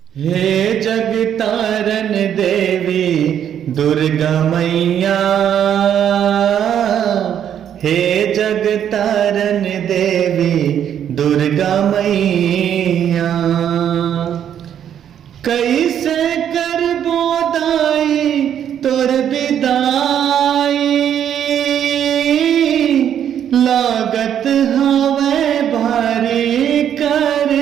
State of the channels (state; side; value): quieter; left; 9.5 dB